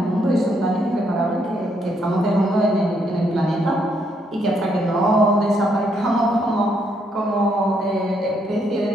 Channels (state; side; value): normal; both; correlation 0.74